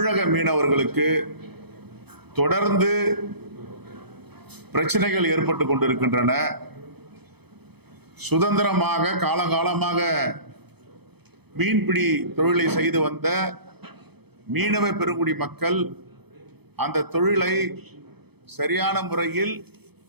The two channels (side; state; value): left; late; 0.98 ms